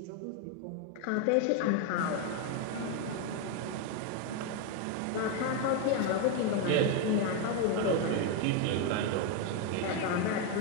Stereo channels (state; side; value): different; both; correlation 0.02